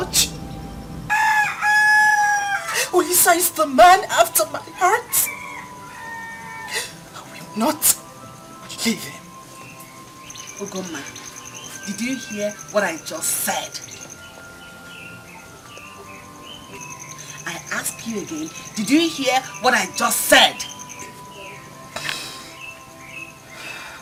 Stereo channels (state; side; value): identical; both; correlation 1.00